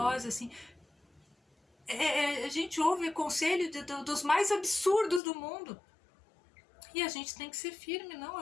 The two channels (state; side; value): drops out; right; at 5.2 s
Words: assim. A gente ouve conselho dos mais absurdos do mundo. E a gente tem que ser firme, não,